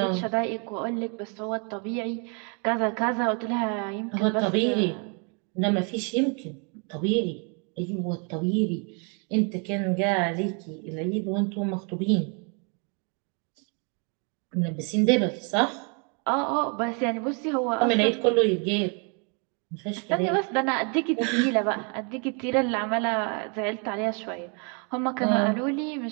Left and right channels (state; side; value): quieter; left; 36.5 dB